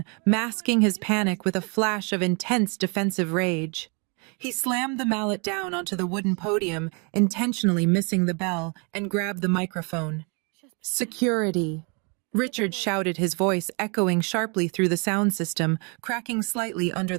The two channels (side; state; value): left; quieter; 34.3 dB